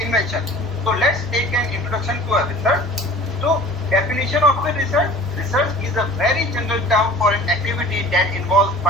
So let's take an introduction to a research. So definition of the research. Research is a very general term for an activity that involves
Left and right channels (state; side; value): normal; both; correlation 0.44